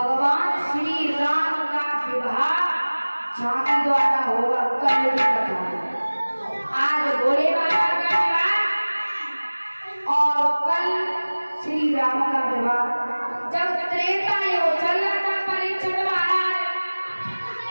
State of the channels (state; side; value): inverted; both; correlation -1.00